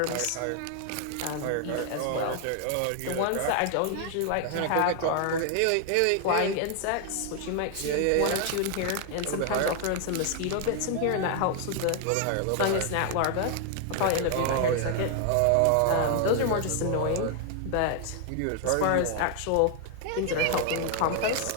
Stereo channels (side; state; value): both; different; correlation 0.00